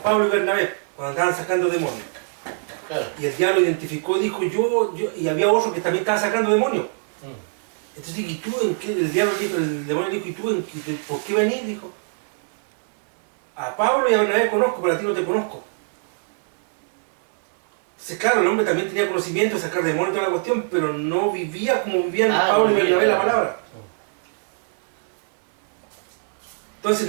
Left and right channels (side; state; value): left; silent; digital silence